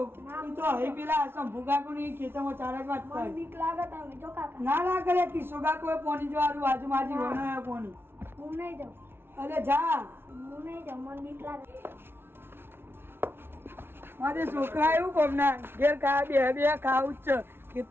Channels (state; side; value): late; left; 0.11 ms